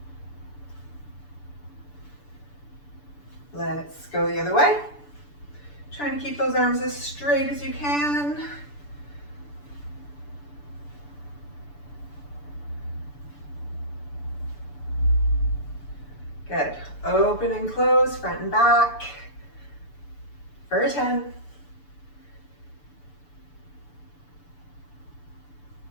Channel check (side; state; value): right; late; 6.9 ms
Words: Let's go the other way. Trying to keep those arms as straight as you can. Good. Open and close, front and back. For 10.